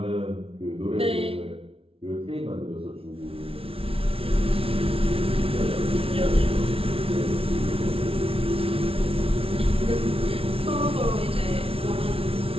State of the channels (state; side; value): late; left; 0.27 ms